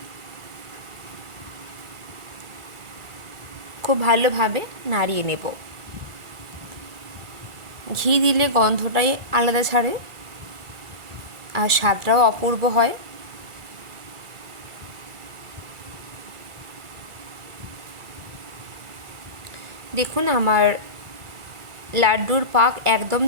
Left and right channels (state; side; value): late; left; 1.4 ms